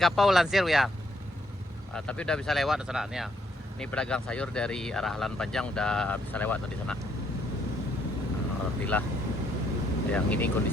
Lansir ya. Tapi udah bisa lewat sana nih ya. Ini pedagang sayur dari arah Alan Panjang udah bisa lewat tadi sana. Alhamdulillah. Yang ini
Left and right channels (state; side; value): normal; both; correlation 0.72